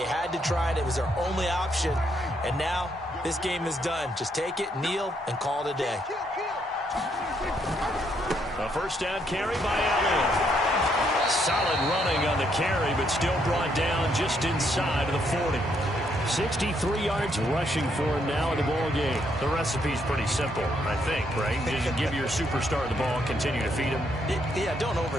had to try it. It was their only option. And now this game is done. Just take it, kneel, and call it a day. A first down carry by Elliott. Solid running on the carry, but still brought down just inside of the 40. 63 yards rushing for him now in the ball game. The recipe's pretty simple, I think, right? Just give your superstar the ball, continue to feed him. Yeah, don't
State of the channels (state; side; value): normal; both; correlation 0.73